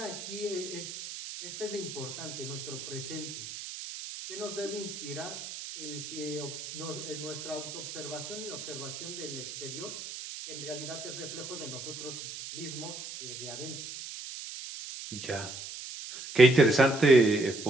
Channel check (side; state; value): right; noise; hiss, 9 dB below the sound